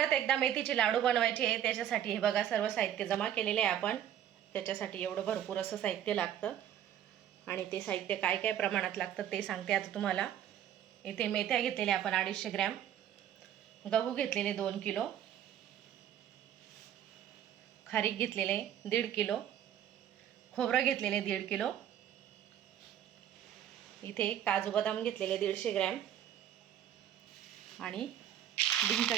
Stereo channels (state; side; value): quieter; left; 10.6 dB